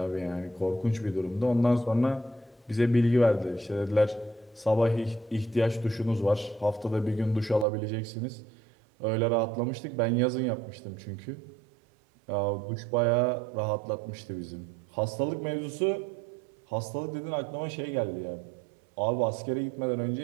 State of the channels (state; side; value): drops out; left; at 7.7 s